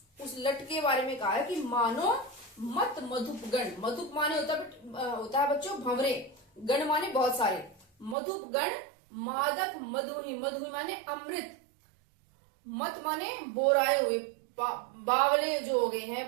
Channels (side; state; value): left; drops out; at 8.2 s